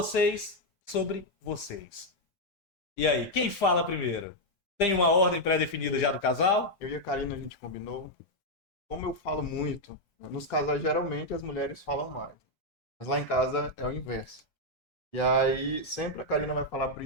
sobre vocês. E aí, quem fala primeiro? Tem uma ordem pré-definida já do casal? Eu e a Karina, a gente combinou. Como eu falo muito, nos casais geralmente as mulheres falam mais. Mas lá em casa é o inverso. E aí sempre a Karina vai falar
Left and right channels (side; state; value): both; normal; correlation -0.01